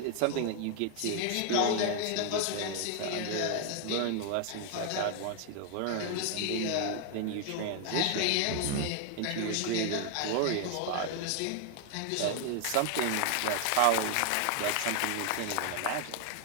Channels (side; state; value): both; different; correlation 0.00